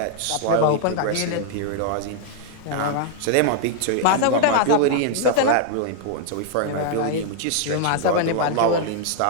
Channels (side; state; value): both; different; correlation 0.00